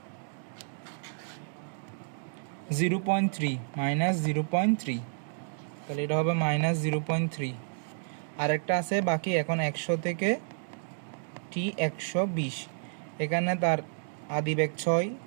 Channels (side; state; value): left; silent; digital silence